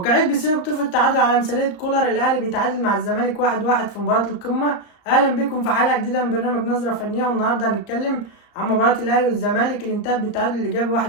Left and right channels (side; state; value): right; late; 34 ms